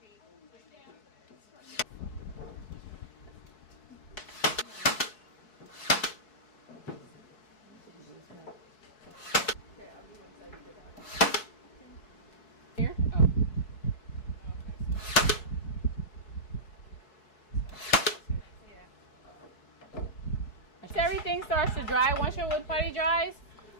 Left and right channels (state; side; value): late; right; 4.7 ms